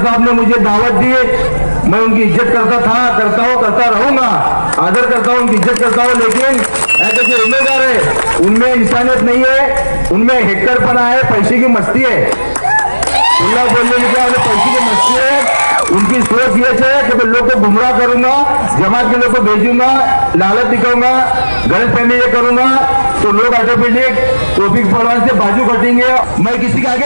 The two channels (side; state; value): both; inverted; correlation -1.00